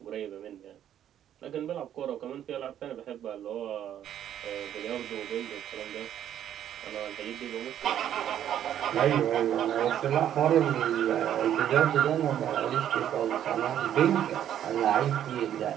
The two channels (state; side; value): quieter; left; 10.5 dB